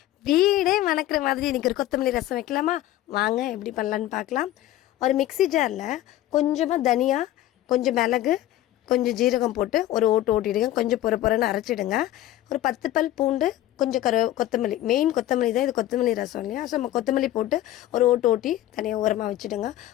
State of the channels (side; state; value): right; quieter; 14.1 dB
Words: வீடே மணக்கிற மாதிரி இன்றைக்கி ஒரு கொத்தமல்லி ரசம் வைக்கலாமா? வாங்க எப்படி பண்ணலான்னு பார்க்கலாம். ஒரு மிக்ஸி ஜாரில் கொஞ்சமாக தனியா, கொஞ்சம் மிளகு, கொஞ்சம் ஜீரகம் போட்டு ஒரு ஓட்டிடுங்க. கொஞ்சம் பொறன்னு அரைச்சிடுங்க. ஒரு 10 பல் பூண்டு, கொஞ்சம் கொத்தமல்லி, மெயின் கொத்தமல்லி தான், இது கொத்தமல்லி ரசம் இல்லையா? ஸோ நம்ம கொத்தமல்லி போட்டு ஒரு ஓட்டி தனியாக உரமாக வச்சுடுங்க.